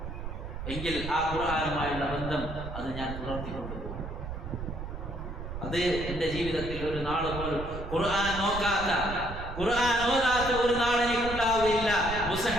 എങ്കിൽ ആ ഖുർആനുമായുള്ള ബന്ധം അത് ഞാൻ പുലർത്തിക്കൊണ്ടുപോകും. അത് എൻ്റെ ജീവിതത്തിൽ ഒരു നാൾ പോലും ഖുർആൻ നോക്കാത്ത, ഖുർആൻ ഓതാത്ത ഒരു നാൾ എനിക്കുണ്ടാവുകയില്ല,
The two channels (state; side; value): noise; right; rumble, 8 dB below the sound